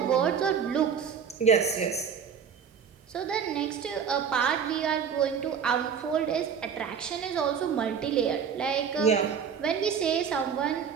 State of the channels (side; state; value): left; quieter; 7.1 dB